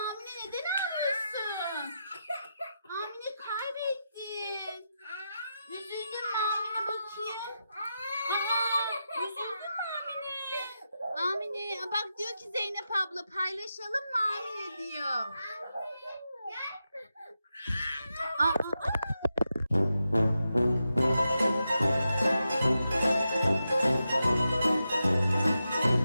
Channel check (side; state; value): both; inverted; correlation -0.88